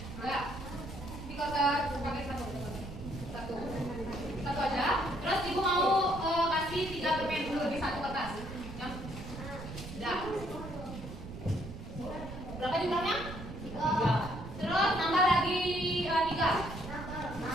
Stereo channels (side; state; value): right; noise; rumble, 10 dB below the sound